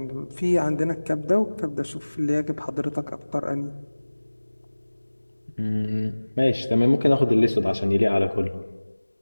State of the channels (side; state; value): both; inverted; correlation -1.00